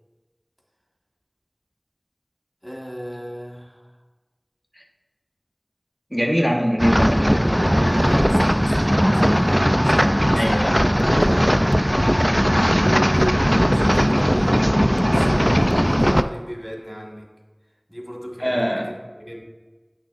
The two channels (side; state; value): both; identical; correlation 1.00